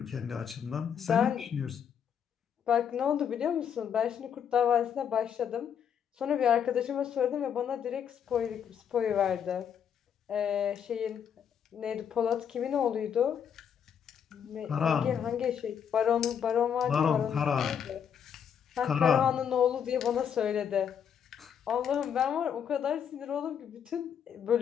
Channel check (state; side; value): quieter; right; 8.1 dB